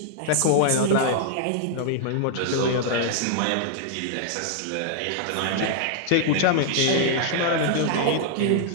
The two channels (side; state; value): both; different; correlation -0.01